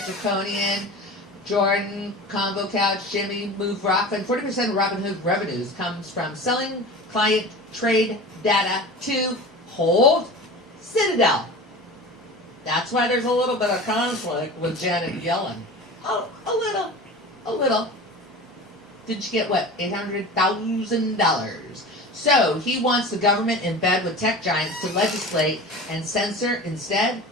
draconian, Jordan, Convo Couch, Jimmy, Move Rockfin. 40% of Robinhood revenues comes from selling client trade data to Hold Citadel. That's why there's a little bit of conflict with Janet Yellen. Oh, a little. Did you get what? $800,000. So he wants the government in bed with tech giants to legislate and censor instead.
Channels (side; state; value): both; normal; correlation 0.34